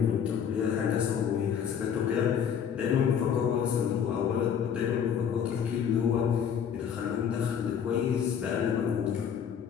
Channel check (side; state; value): right; quieter; 8.0 dB